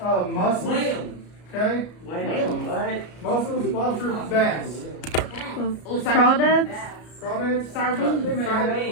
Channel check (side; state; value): right; late; 33 ms